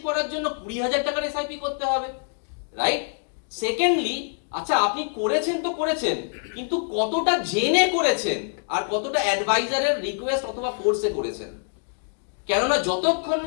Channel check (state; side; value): silent; right; digital silence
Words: করার জন্য 20,000 টাকার এসআইপি করতে হবে, রাইট? সেকেন্ডলি, আচ্ছা আপনি করেছেন তো করেছেন, কিন্তু কতটা জেনে করেছেন আর কতটা অ্যাডভাইজারের রিকোয়েস্ট অথবা ফোর্সে করেছেন? কেননা যতক্ষণ